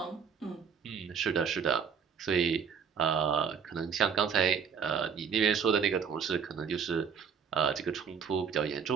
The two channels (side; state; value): left; quieter; 6.8 dB